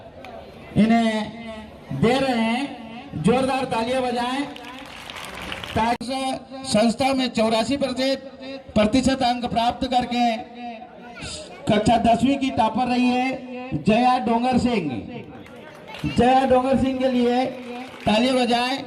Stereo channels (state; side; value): identical; both; correlation 1.00